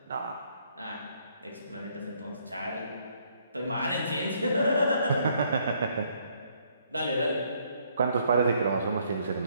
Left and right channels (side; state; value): both; inverted; correlation -0.68